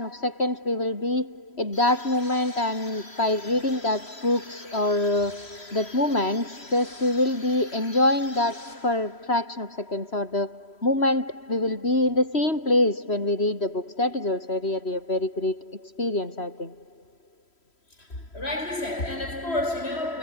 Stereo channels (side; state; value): right; late; 3.1 ms